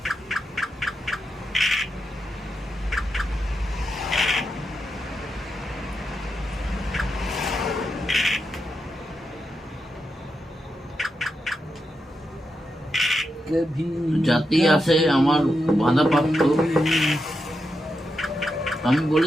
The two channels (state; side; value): normal; both; correlation 0.86